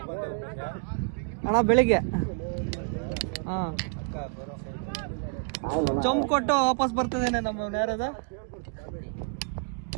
ಅಣ್ಣ ಬೆಳಿಗ್ಗೆ ಚೊಂಬು ಕೊಟ್ಟು ವಾಪಸ್ ಬರ್ತದೇನೆ ನಮ್ಮ ಯಾರದು.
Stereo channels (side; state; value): left; quieter; 38.4 dB